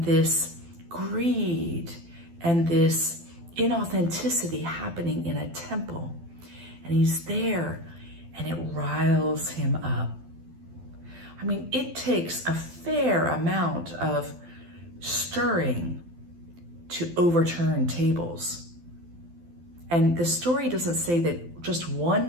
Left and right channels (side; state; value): left; late; 12 ms